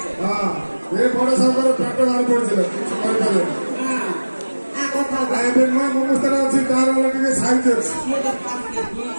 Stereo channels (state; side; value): inverted; both; correlation -1.00